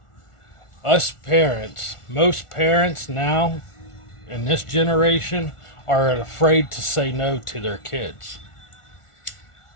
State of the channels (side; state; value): right; late; 1.4 ms